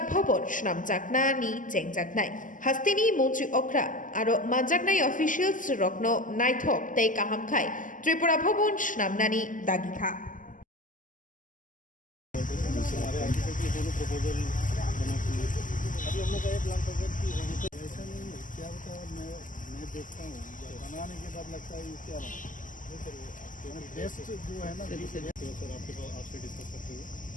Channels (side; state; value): right; late; 0.38 ms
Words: ভবন শ্রামচাকনা নি চেংজাকনাই হাস্তিনি মন্ত্রী অগ্রা আর মানজাকনাই অফিসিয়ালস রত্ন নাইথক তাই কাহামখাই ত্রিপুরা ভবন শ্রামনানি দাগিখা अभी हम लोग का ये प्लान था सर कि ऐसा नहीं है क्या होता है मैं देखता हूँ बनाने के बाद लगता है ये क्या बना बेस्ट जो है ना सर आपके पास आपसे डिस्कस करते हुए